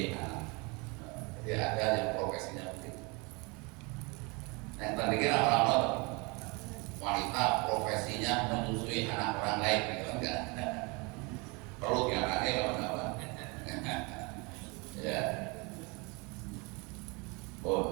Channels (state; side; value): quieter; left; 28.8 dB